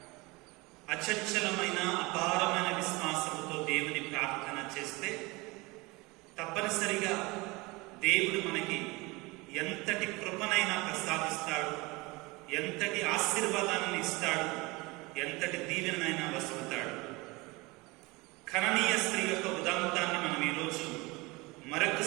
అచంచలమైన అపారమైన విశ్వాసముతో దేవుని ప్రార్థన చేస్తే తప్పనిసరిగా దేవుడు మనకి ఎంతటి కృపనైనా ప్రసాదిస్తాడు, ఎంతటి ఆశీర్వాదాన్ని ఇస్తాడు, ఎంతటి దీవెనైనా వసులుతాడు. కననీయ స్త్రీ యొక్క ఉదాంతాన్ని మనం ఈరోజు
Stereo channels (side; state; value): left; quieter; 24.2 dB